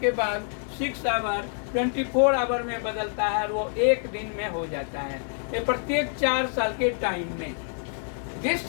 बाद 6 आवर 24 आवर में बदलता है और वो एक दिन में हो जाता है, ये प्रत्येक 4 साल के टाइम में। दिस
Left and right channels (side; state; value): right; silent; 60 dB below the other